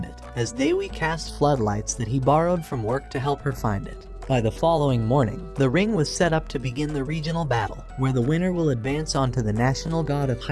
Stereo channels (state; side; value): identical; both; correlation 1.00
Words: it, as Dewi cast floodlights that he borrowed from work to help her find it. By the following morning, the ring was set up to begin the regional battle, where the winner will advance onto the National God of